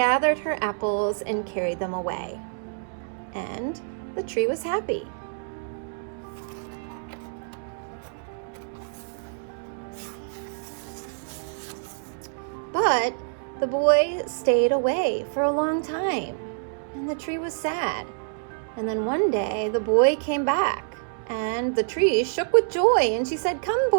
her apples and carried them away. And the tree was happy. But the boy stayed away for a long time, and the tree was sad. And then one day the boy came back, And the tree shook with joy, and she said, "Come,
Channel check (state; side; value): silent; left; digital silence